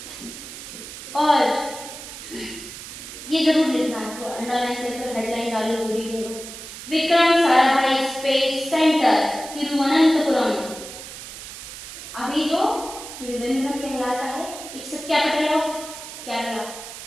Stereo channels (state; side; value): noise; right; hiss, 12 dB below the sound